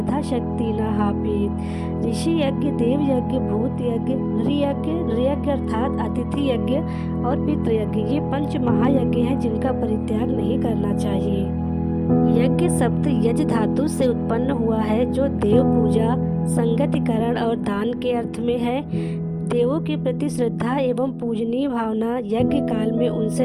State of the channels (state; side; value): identical; both; correlation 1.00